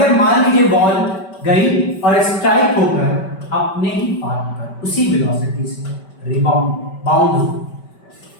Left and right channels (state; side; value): late; right; 5.2 ms